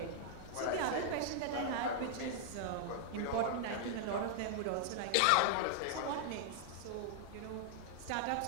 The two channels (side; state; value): both; different; correlation -0.01